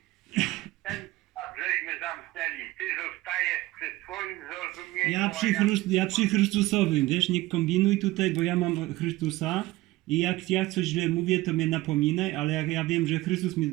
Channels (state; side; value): quieter; left; 18.4 dB